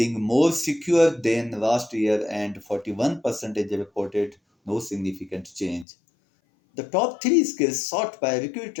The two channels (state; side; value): drops out; right; at 5.9 s